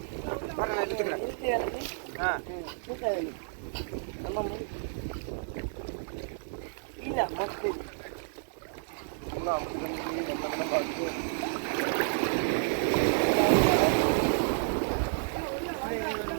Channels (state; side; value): silent; left; digital silence